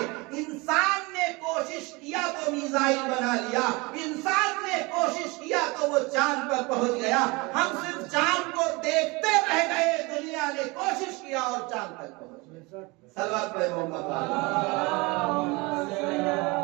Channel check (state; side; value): quieter; left; 25.5 dB